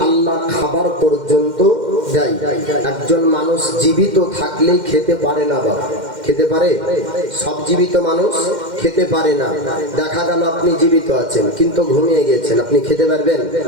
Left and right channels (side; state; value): left; late; 2.1 ms